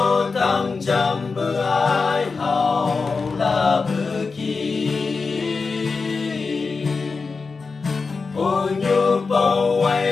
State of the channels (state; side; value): quieter; right; 4.5 dB